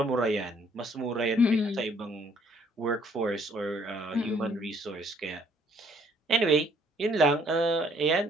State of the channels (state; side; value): normal; both; correlation 0.63